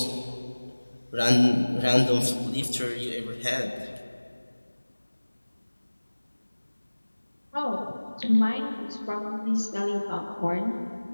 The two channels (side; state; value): both; inverted; correlation -1.00